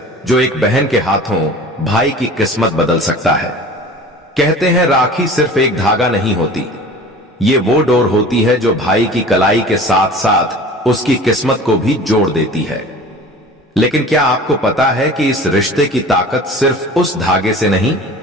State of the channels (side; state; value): both; normal; correlation 0.41